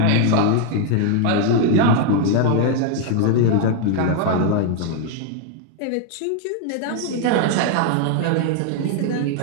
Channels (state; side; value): different; both; correlation 0.00